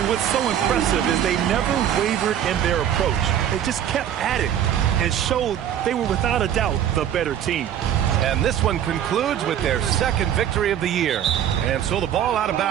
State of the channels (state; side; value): quieter; left; 10.1 dB